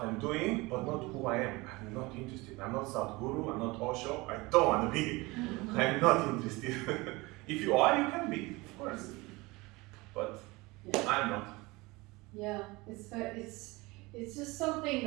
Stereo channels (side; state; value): left; quieter; 23.1 dB